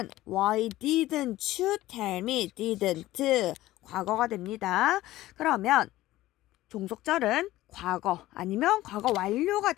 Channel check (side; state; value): right; quieter; 16.1 dB